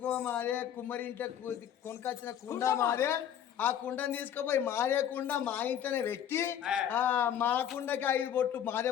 మాదే కుమ్మరింట కొనుకొచ్చిన కుండ మాదే ఆ కుండని తీసుకుపోయి మాదే కుండ మా ఇంట్లోనే పెట్టి మా కుండకి 5 బొట్టు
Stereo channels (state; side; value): quieter; right; 9.7 dB